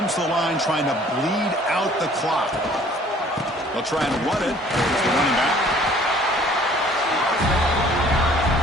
to the line trying to bleed out the clock. They'll try and run it. There's the running back.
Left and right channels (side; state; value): both; normal; correlation 0.55